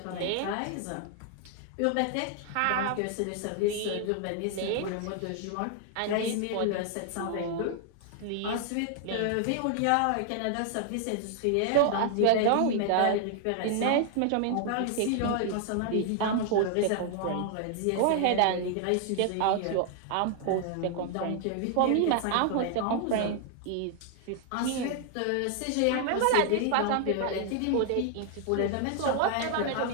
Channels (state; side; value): different; both; correlation 0.00